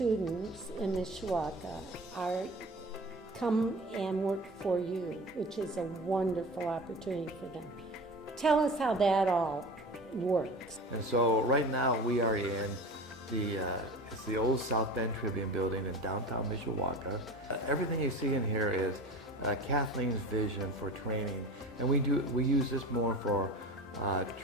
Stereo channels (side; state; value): both; normal; correlation 0.35